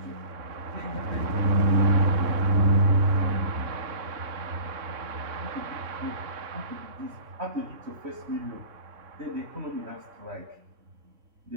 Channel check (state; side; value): late; left; 3.6 ms